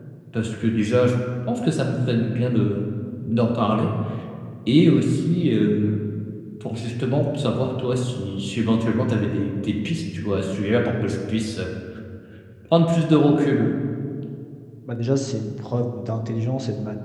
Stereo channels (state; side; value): identical; both; correlation 1.00